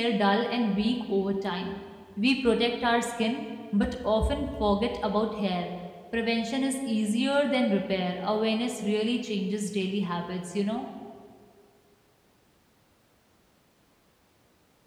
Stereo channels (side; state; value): both; identical; correlation 1.00